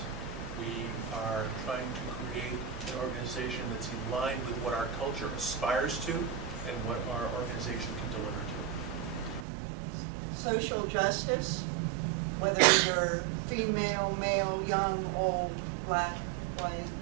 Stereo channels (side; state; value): left; drops out; at 9.5 s